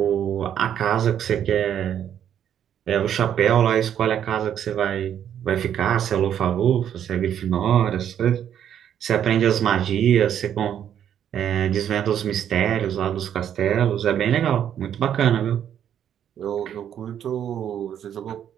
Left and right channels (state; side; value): quieter; left; 9.6 dB